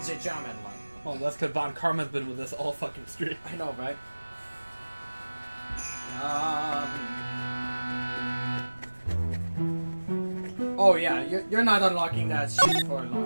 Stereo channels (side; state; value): both; inverted; correlation -1.00